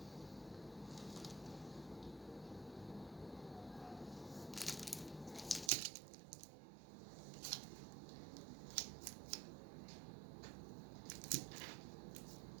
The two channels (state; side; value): drops out; left; at 5.7 s